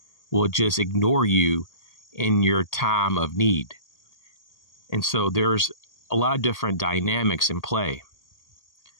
will just ignore you in your time of need. And so there's a lot of different dynamics in play.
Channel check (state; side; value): late; right; 1.8 ms